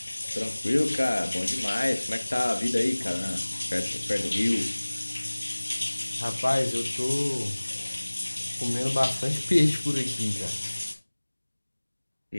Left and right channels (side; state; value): both; inverted; correlation -1.00